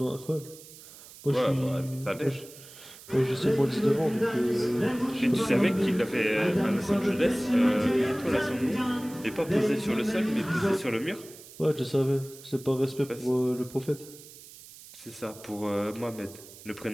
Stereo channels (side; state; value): right; noise; hiss, 19 dB below the sound